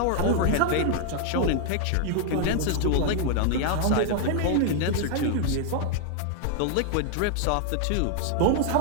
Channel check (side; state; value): both; different; correlation 0.00